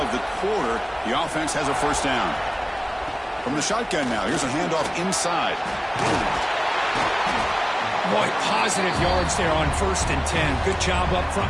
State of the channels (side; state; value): both; identical; correlation 1.00